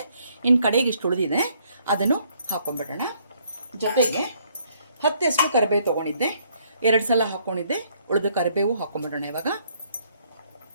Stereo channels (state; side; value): inverted; both; correlation -0.67